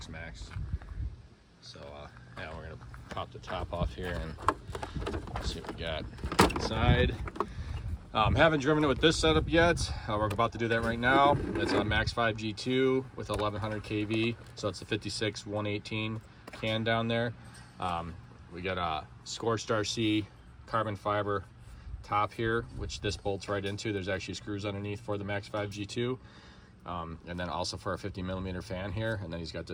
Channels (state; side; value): identical; both; correlation 1.00